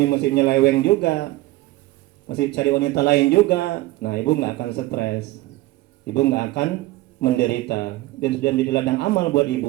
masih nyeleweng juga, masih cari wanita lain juga, nah ibu nggak akan stres, ibu nggak akan menderita, dan sudah menjadi ladang amal buat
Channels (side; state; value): left; quieter; 18.1 dB